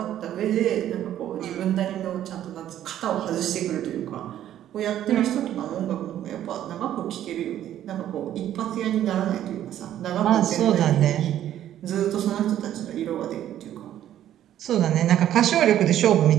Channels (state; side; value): quieter; left; 11.6 dB